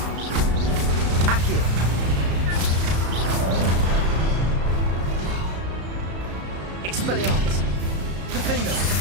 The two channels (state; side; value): late; left; 34 ms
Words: Accio! Expelliarmus! Defendo!